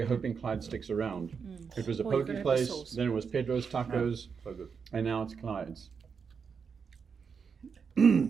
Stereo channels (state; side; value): quieter; left; 6.0 dB